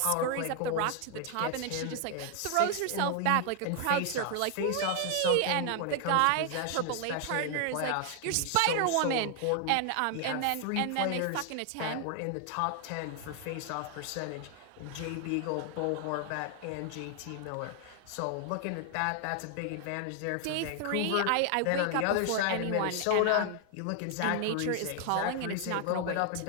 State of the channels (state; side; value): different; both; correlation 0.00